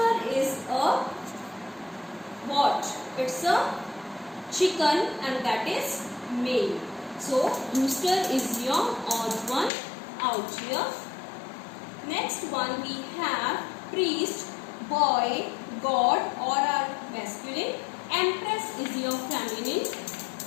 is a what? It's a chicken and that is male. So rooster is your odd one out here. Next one we have priest, boy, god or are masculine. Empress is your feminine.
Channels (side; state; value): right; drops out; at 9.7 s